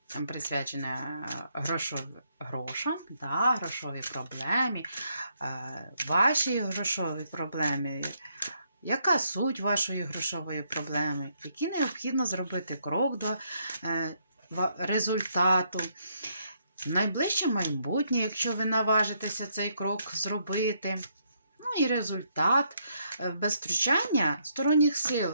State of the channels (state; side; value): inverted; both; correlation -0.74